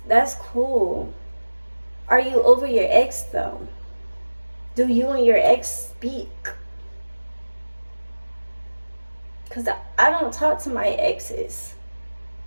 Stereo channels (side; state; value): both; inverted; correlation -1.00